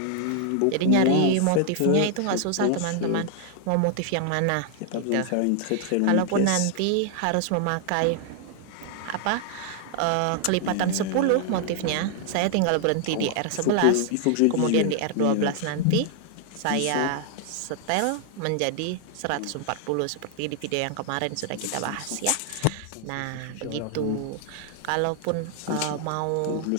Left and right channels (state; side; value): different; both; correlation 0.00